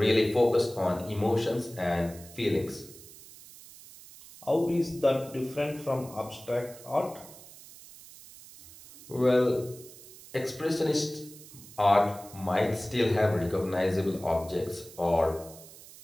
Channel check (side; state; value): right; noise; hiss, 19 dB below the sound